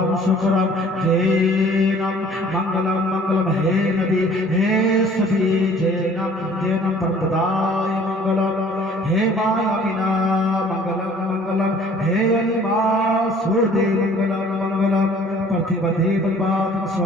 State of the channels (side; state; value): both; normal; correlation 0.53